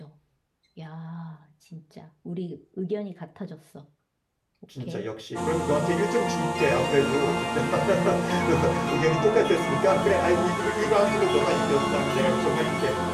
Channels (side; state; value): both; identical; correlation 1.00